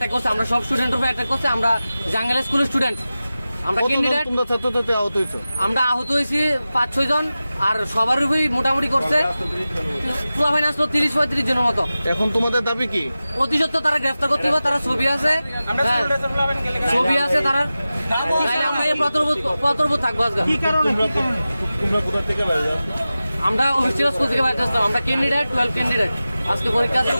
করছে, আমরা সব স্টুডেন্টের উপরে অ্যাটাক করছে। আমরা জাঙ্গেল স্কুলের স্টুডেন্ট, আমরা ক্যান্ডিডেট, আমরা আহত হয়েছি 5-6 জন, আর সবার উপরেই মোটামুটি করছে পোলাপাইন আসলো 30-35 জনের মতো। এখন তোমাদের দাবি কি? অতি সত্ত্বর তারা গ্রেফতার করতে হবে, তারা ছবি আছে, ছবি আছে তারা, আমরা এই প্রতর্বোধ থাকবো। আজকে আমরা অফিসিয়াল স্কুল থেকে বাইরে আসতাম, আমরা ক্যান্ডিডেট 12 ক্যান্ডিডেট, আজকে পরীক্ষা আছে,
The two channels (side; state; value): both; inverted; correlation -0.95